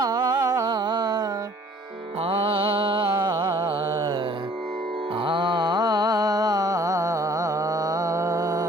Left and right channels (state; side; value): normal; both; correlation 0.55